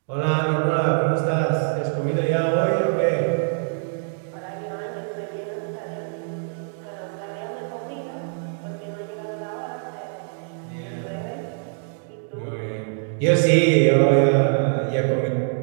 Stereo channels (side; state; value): left; silent; digital silence